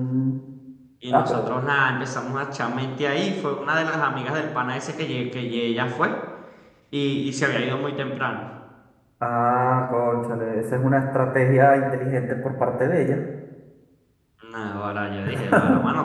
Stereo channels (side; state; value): both; identical; correlation 1.00